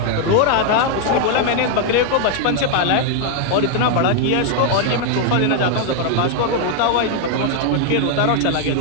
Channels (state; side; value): different; both; correlation 0.00